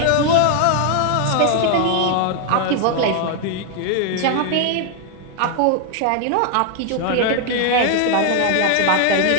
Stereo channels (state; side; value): different; both; correlation 0.00